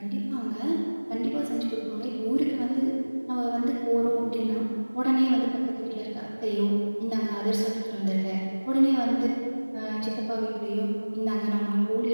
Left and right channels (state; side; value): inverted; both; correlation -1.00